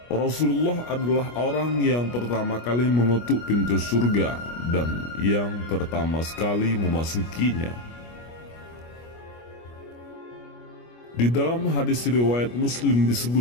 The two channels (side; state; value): right; late; 25 ms